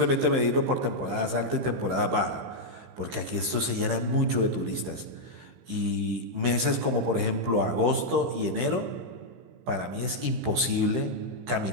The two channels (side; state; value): left; late; 15 ms